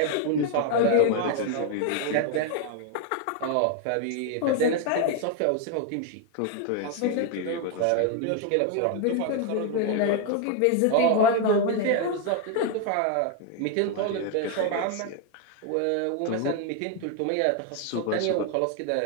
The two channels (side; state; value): both; different; correlation 0.01